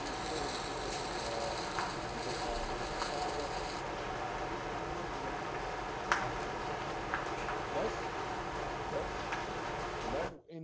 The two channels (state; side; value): identical; both; correlation 1.00